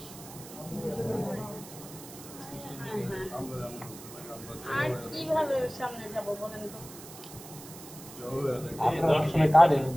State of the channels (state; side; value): noise; right; hiss, 16 dB below the sound